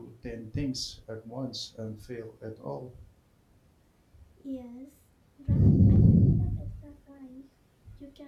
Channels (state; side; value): identical; both; correlation 1.00